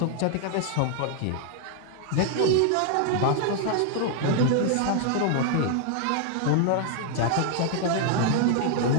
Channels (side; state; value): both; different; correlation 0.00